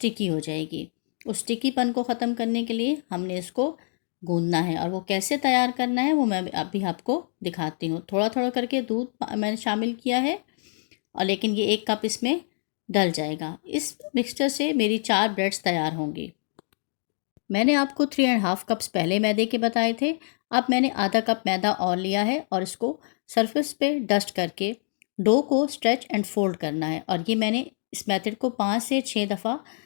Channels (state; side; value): silent; right; 61 dB below the other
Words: हो जाएगी। उस स्टिकीपन को ख़त्म करने के लिए हमने इसको गूंदना है और वो कैसे तैयार करना है वो मैं अभी आपको दिखाती हूँ। थोड़ा थोड़ा करके दूध मैंने शामिल किया है और लेकिन ये 1 कप इसमें डल जाएगा। इस मिक्सचर से मेरी 4 ब्रेड्स तैयार होंगी। मैंने आपको 3 एंड हाफ कप्स पहले मैदे के बताए थे। अब मैंने आधा कप मैदा और लिया है और इसको सरफेस पे डस्ट करके डो को स्ट्रेच एंड फोल्ड करना है। और ये मैंने इस मेथड को 5